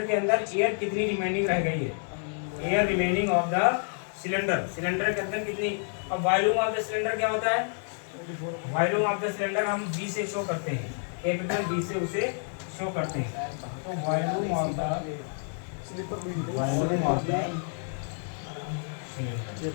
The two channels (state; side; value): silent; right; 57 dB below the other